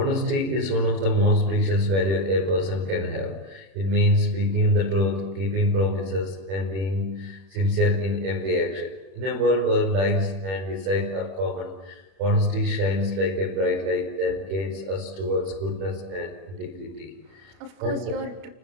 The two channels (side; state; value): left; late; 31 ms